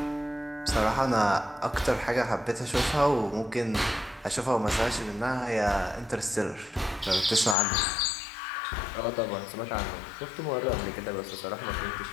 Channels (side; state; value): right; drops out; at 7.6 s